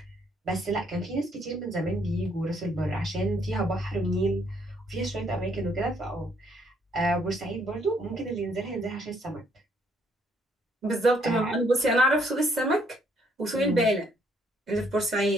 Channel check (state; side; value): normal; both; correlation 0.69